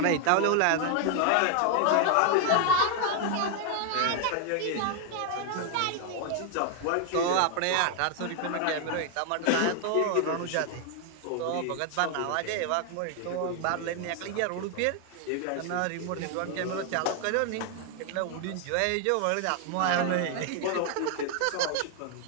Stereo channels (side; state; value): both; different; correlation 0.00